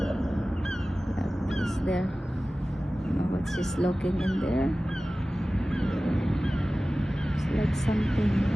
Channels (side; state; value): both; normal; correlation 0.96